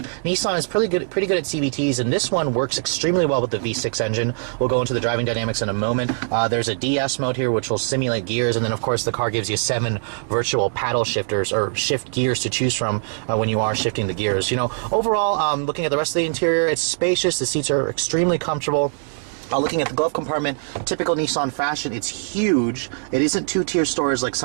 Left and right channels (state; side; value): silent; left; 64 dB below the other